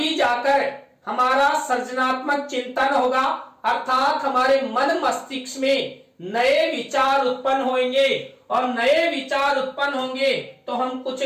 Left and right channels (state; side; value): identical; both; correlation 1.00